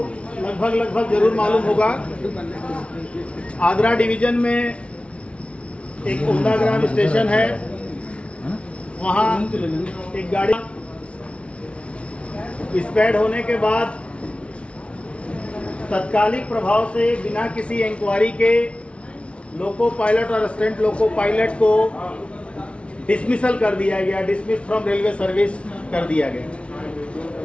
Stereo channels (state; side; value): late; right; 0.060 ms